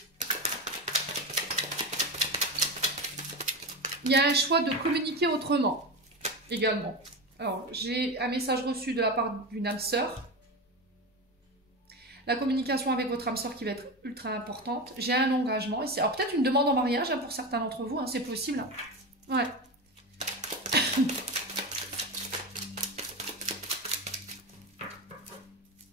Il y a un choix de communiquer autrement également. Alors, j'ai un message reçu de la part d'une âme sœur. La communication avec votre âme sœur qui va être ultra importante. J'ai un engagement ici. Alors, peut-être une demande en mariage hein, pour certains d'entre vous. Hein, c'est possible. Hein. Ouais.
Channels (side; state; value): both; normal; correlation 0.21